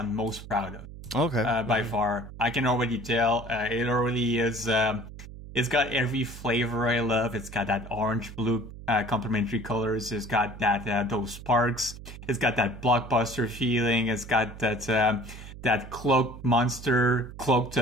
most proud of. Okay. By far. I can already tell. It already is. It's got every flavor I love. It's got that orange-blue complementary colors. It's got that those sparks. It's got that blockbuster feeling. It's got that cloaked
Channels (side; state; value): right; noise; hum, 14 dB below the sound